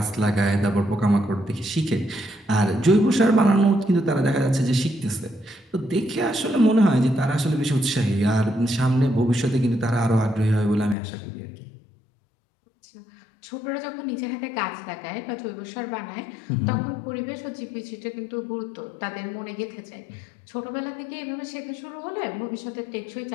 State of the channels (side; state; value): right; drops out; at 11.0 s